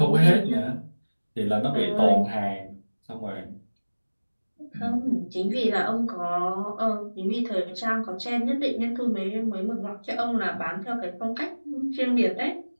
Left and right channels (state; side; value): inverted; both; correlation -1.00